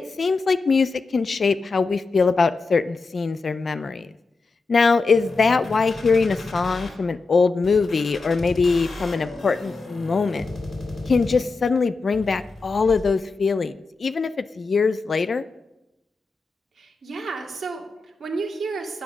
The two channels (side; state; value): right; quieter; 4.0 dB